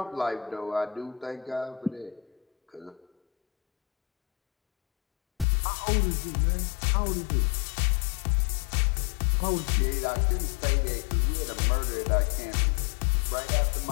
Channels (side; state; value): right; drops out; at 5.5 s